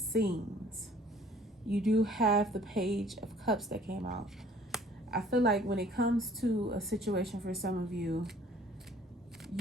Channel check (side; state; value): both; normal; correlation 0.55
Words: You do have the Page of Cups that came out. I feel like when it comes to a situation for some of you,